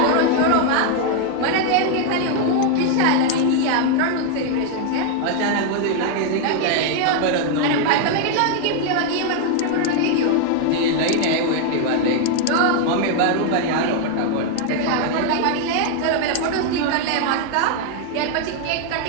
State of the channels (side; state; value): both; different; correlation 0.00